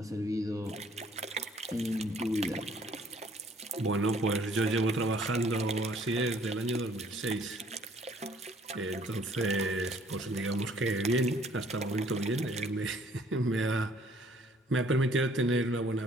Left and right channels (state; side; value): normal; both; correlation 0.60